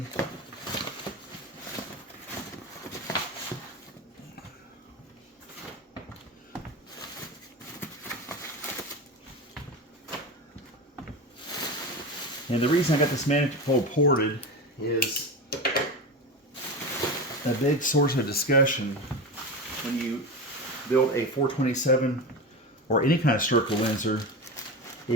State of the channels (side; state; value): both; normal; correlation 0.23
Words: And the reason I got this manifold ported is a big source of discussion when you build a 427 or any kind of stroker Windsor